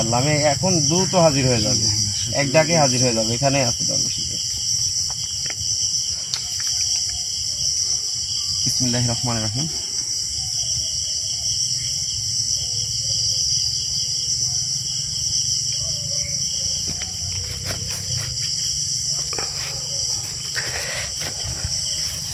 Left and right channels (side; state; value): both; identical; correlation 1.00